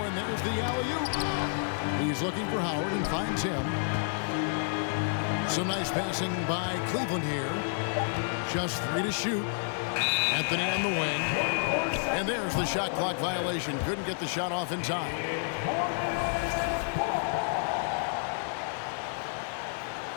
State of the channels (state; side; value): silent; right; 58 dB below the other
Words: and there's the alley-oop. He's looking for Howard and finds him. Some nice passing by Cleveland here. Just 3 to shoot. Anthony on the wing. And there's the shot clock violation. Couldn't get the shot off in time.